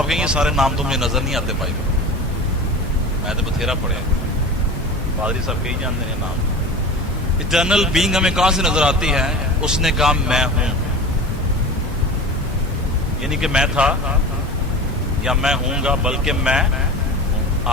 کہیں گے سارے نام تو مجھے نظر نہیں آتے بھائی, میں تو بتھیرا پڑے, پادری صاحب کہیں جانتے ہیں نام. ایٹرنل بینگ ہمیں کہاں سے نظر آتی ہے؟ اس نے کہا میں ہوں, یعنی کہ میں تھا یا میں ہوں گا, بلکہ میں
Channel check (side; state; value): both; normal; correlation 0.33